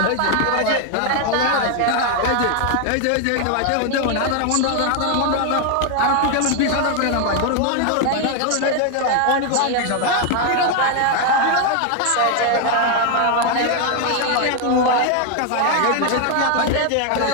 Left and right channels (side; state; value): both; different; correlation 0.00